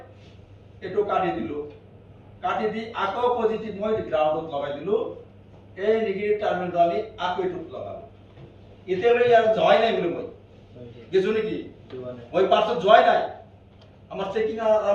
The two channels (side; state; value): both; identical; correlation 1.00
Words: এটো কাটি দিলো কাটি দি আকৌ পজিটিভ মই গ্ৰাউন্ডত লগাই দিলো এই নেগেটিভ টাৰ্মিনেল দালি আকৌ এটুত লগালো এতিয়ালৈ ইয়াৰ জয় নাই বুলি মই গেছো নেকি মই পাছত জয় নাই আমার চেকিং